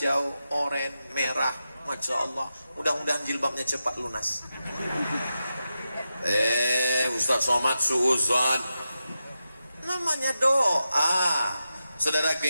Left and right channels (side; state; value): both; inverted; correlation -0.90